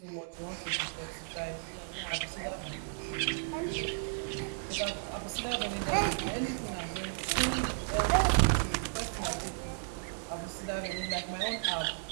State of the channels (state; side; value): silent; left; digital silence